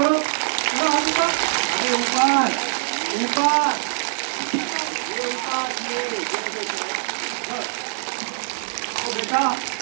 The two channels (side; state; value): left; silent; digital silence